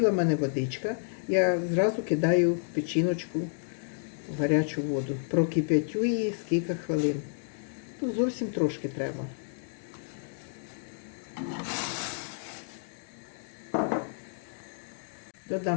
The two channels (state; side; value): silent; right; digital silence